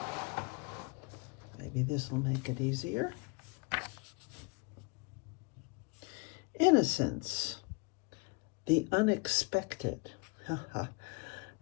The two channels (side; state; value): right; quieter; 30.0 dB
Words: Maybe this will make it easier. Innocence. The unexpected.